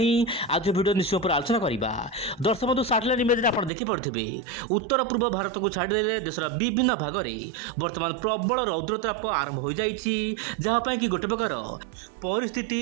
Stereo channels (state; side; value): drops out; left; at 3.7 s